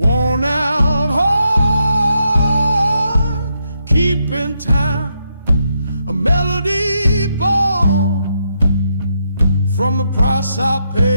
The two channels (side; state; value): both; inverted; correlation -0.80